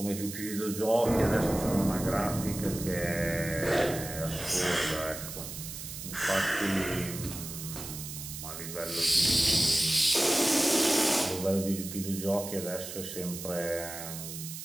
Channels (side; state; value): right; noise; hiss, 9 dB below the sound